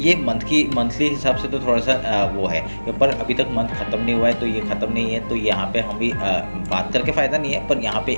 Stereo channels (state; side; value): inverted; both; correlation -1.00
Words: मंथली हिसाब से तो थोड़ा सा वो है, पर अभी तक मंथ खत्म नहीं हुआ है, तो ये खत्म नहीं है। तो यहाँ पे हम भी बात करके फ़ायदा नहीं है, पर यहाँ पे